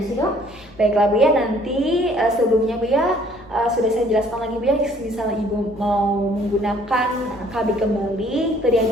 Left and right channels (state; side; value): noise; left; hum, 24 dB below the sound